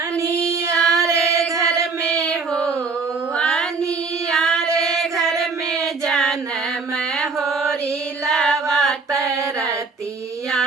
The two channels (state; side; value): quieter; left; 4.5 dB